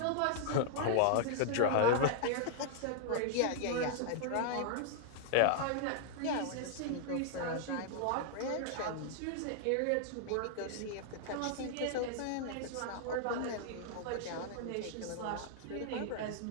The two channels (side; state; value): both; different; correlation 0.00